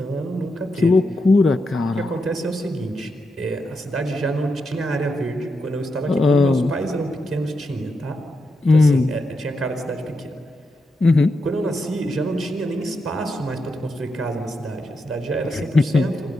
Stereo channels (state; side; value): normal; both; correlation 0.85